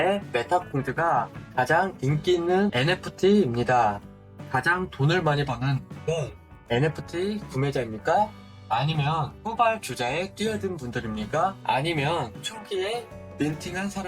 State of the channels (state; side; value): identical; both; correlation 1.00